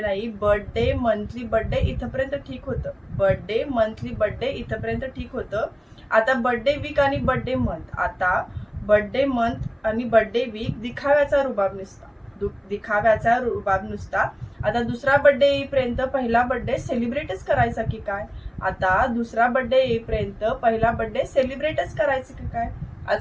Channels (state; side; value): identical; both; correlation 1.00